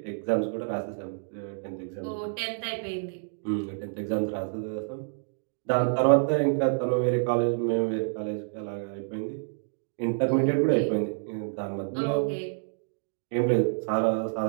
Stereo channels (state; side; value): silent; left; digital silence